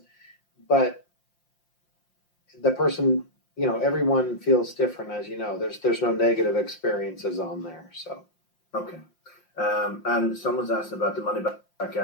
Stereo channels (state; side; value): late; right; 5.7 ms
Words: But the person, everyone feels different, as you know. There's no negative experiences on there, so. Okay. And someone's asked about the money back